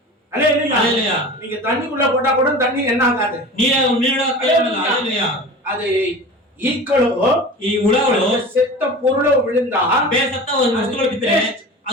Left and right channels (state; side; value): normal; both; correlation 0.35